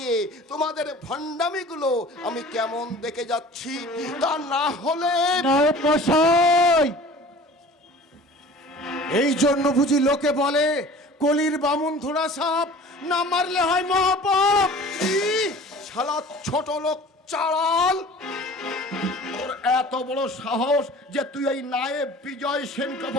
তোমাদের ভণ্ডামিগুলো আমি কেমন দেখে যাচ্ছি। তা না হলে এই জন্য বুঝি লোকে বলে কলির বামুন ধরা সাপ, না মারলে হয় মহাপাপ। শালা ছোট লোক চালাল, তোর এত বড় সাহস যে তুই এই নায়েব বিজয় সেনকে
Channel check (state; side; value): normal; both; correlation 0.43